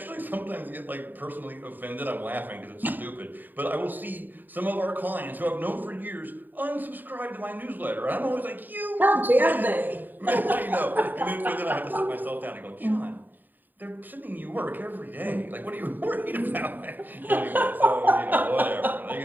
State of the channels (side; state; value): left; late; 0.089 ms